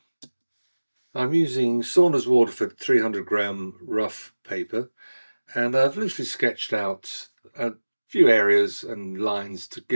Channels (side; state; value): both; inverted; correlation -1.00